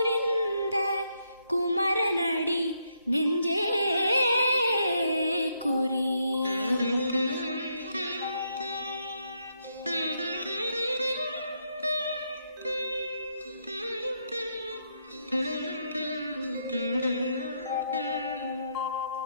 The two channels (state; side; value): inverted; both; correlation -0.77